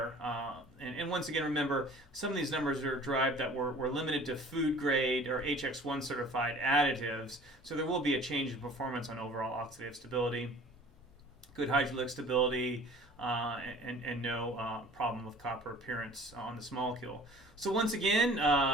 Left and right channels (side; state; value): both; normal; correlation 0.47